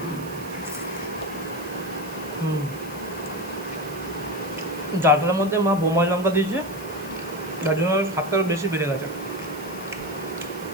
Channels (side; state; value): right; noise; hiss, 18 dB below the sound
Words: ডালটার মধ্যে মা বোম্বাই লঙ্কা দিয়েছে, যার জন্য স্বাদটা বেশি বেড়ে গেছে।